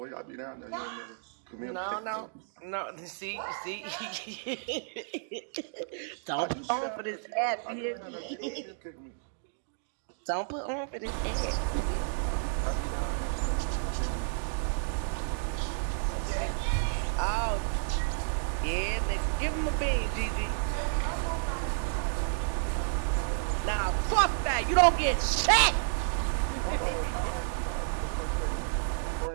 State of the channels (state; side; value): silent; left; digital silence